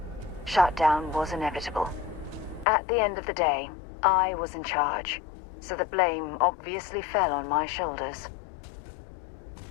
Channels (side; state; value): right; drops out; at 2.7 s